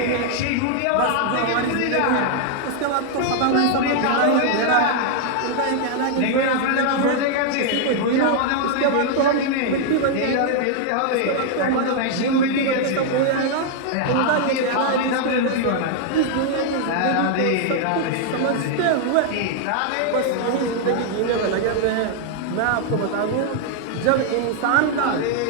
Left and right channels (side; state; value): both; different; correlation 0.00